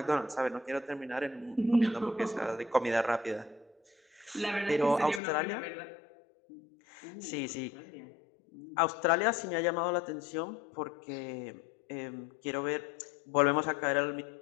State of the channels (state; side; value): drops out; right; at 5.2 s